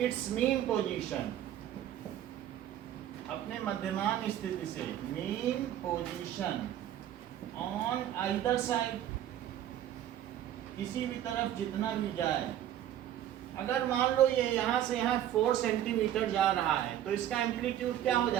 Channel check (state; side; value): quieter; left; 11.6 dB